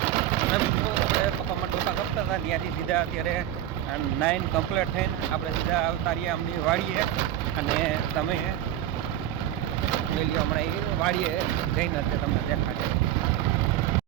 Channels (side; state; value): left; quieter; 12.3 dB